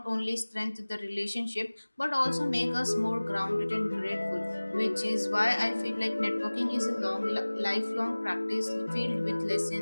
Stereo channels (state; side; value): inverted; both; correlation -1.00